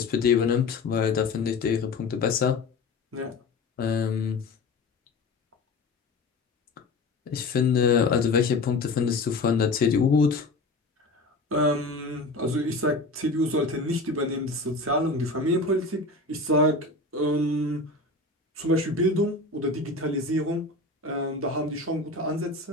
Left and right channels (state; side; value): quieter; right; 3.3 dB